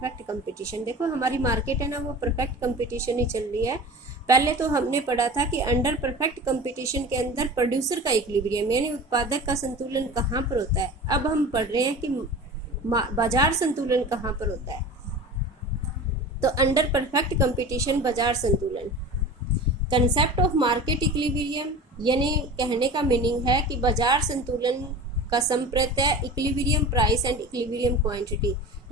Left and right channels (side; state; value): both; normal; correlation 0.35